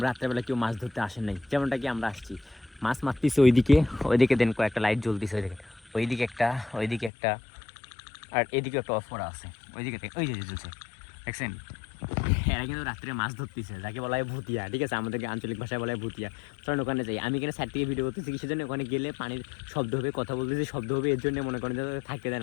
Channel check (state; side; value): drops out; right; at 7.1 s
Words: রাত্রেবেলা কেউ মাছ ধরতে আসেন নাই, যেমনটা কি আমরা আসছি। মাছ মারতেছি ওইদিকে দেন কয়েকটা লাইট জ্বলতেছে, ওইদিকে একটা আর এদিকে একটা অফ করা আছে, ওই যে জ্বলছে, দেখছেন? এরা কিন্তু রাত্রে মাছ ধরতেছে, যাকে বলা হয় ভুতিয়া, ঠিক আছে? আমাদের আঞ্চলিক ভাষায় বলা হয় ভুতিয়া। চলেন ওখানে যাই। আমি এখানে সাইড থেকে ভিডিও করতেছি, কিসের জন্য? ওখানে গেলে পানির শব্দ হবে, কথা বলতেছি শব্দ হবে, এর জন্য মনে করেন যে থাকতে দেয়